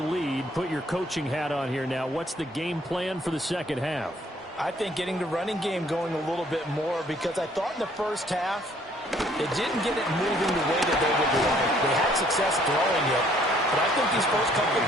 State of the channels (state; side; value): normal; both; correlation 0.62